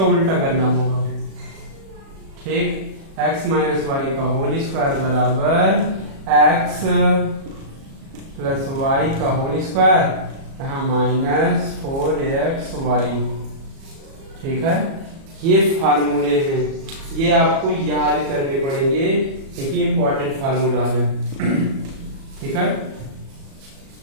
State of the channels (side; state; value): left; late; 37 ms